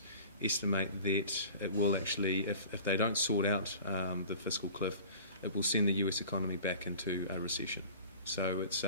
estimate that it will actually, if they don't sort out the fiscal cliff, it will send the US economy back into a recession. So it's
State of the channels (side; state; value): both; inverted; correlation -0.42